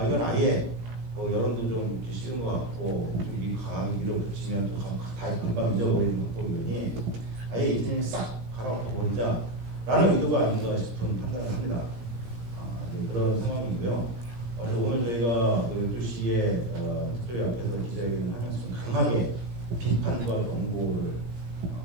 이건 아예 여론도 좀 싫은 것 같고 이 강한 밀어붙이면 다 금방 잊어버리는 것 보니 아예 이제는 싹 갈아엎어버리자라는 의도가 아닌가 싶은 판단을 합니다. 그런 상황이고요. 오늘 저희가 12시에 특별히 앞에서 기자회견을 하면서 강하게 비판과 경고를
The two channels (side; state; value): left; late; 17 ms